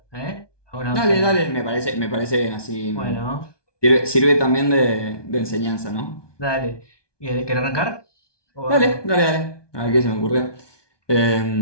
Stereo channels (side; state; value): right; late; 1.2 ms